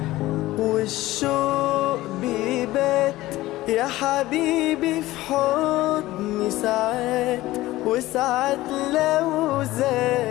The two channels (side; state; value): right; quieter; 17.2 dB